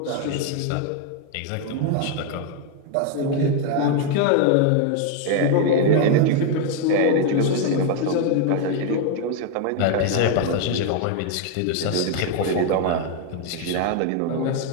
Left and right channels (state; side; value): different; both; correlation 0.01